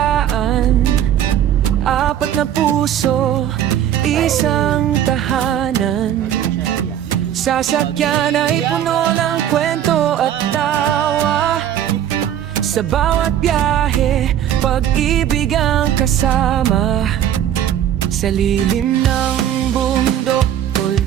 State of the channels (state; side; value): quieter; left; 10.5 dB